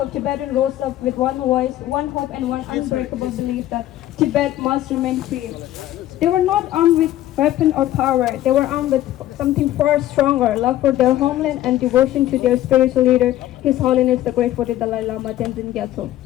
Tibetans rose up with one voice, one hope, and one unbreakable belief that Tibet must remain free. They were not armed with weapon or power. They were armed with something far stronger, love for their homeland and devotion to their spiritual leader, His Holiness the Great Buddha Dalai Lama Tenzin Gyatso.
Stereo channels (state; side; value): quieter; right; 13.8 dB